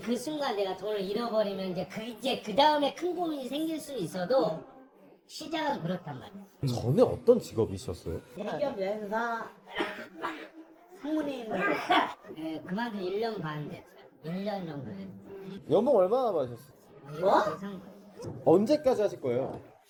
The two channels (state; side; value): identical; both; correlation 1.00